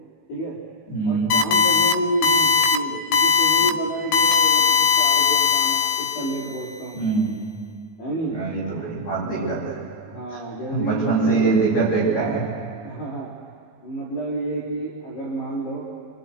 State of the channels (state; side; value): late; right; 19 ms